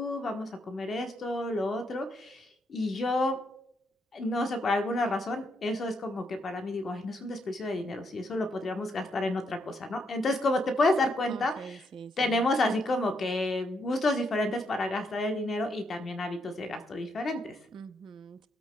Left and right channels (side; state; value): both; normal; correlation 0.77